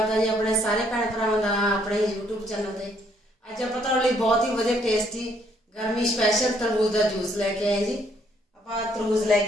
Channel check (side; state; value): both; normal; correlation 0.68